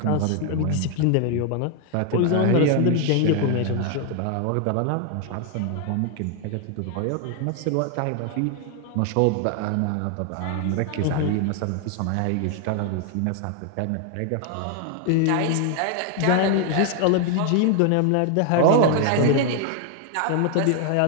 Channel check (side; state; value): both; different; correlation 0.00